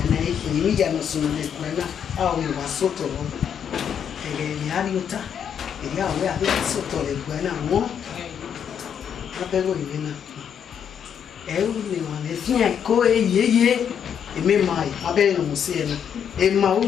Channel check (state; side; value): quieter; right; 8.1 dB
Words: ìní ìyànà sọ̀rọ̀ lè pẹ̀lá àwọn ìwà sọ́tọ̀ wọn ẹ̀rẹ̀ ìrìn àríọ́ta èdè àwọn àbẹ́ sọ́tọ̀ lè pẹ̀lá wọn lábẹ́rọ̀ ìwé náà ẹ̀rù ni wọn lè fi hàn kó eyeye èmi máa ìpábẹ́rẹ́ ìrìn sí ẹnu èmi máa